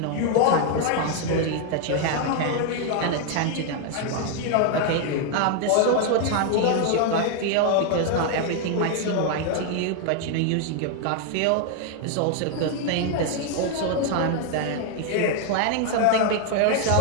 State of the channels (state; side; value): different; both; correlation 0.00